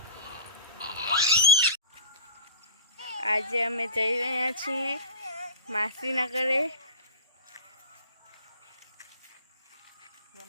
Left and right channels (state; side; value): inverted; both; correlation -0.39